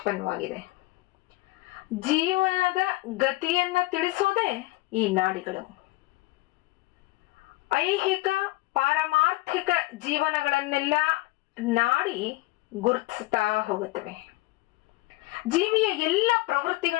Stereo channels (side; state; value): right; quieter; 20.1 dB